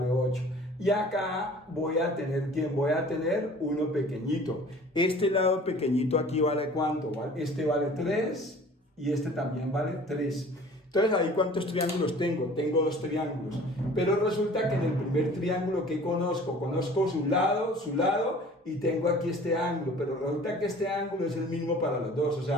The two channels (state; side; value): normal; both; correlation 0.47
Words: 8. Y acá voy a tener, ¿quién? Voy a tener uno pequeñito. Este lado pequeñito aquí vale ¿cuánto? Este vale 3 y este también vale 3. Entonces ahí ¿cuántos triángulos tengo? Tengo dos triángulos. Pero resulta que en el primer triángulo que conozco su lado y tengo aquí este ángulo. Pero resulta que este ángulo es el mismo para los dos. O